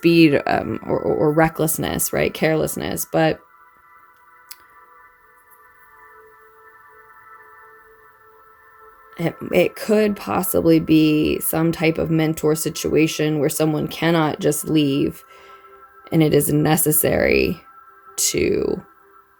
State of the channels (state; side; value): identical; both; correlation 1.00